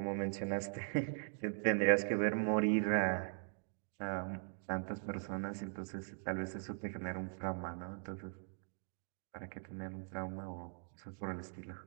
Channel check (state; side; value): silent; left; digital silence